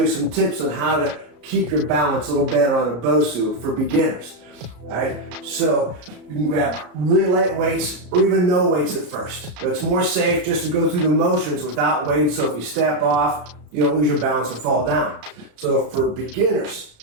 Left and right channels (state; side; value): late; left; 33 ms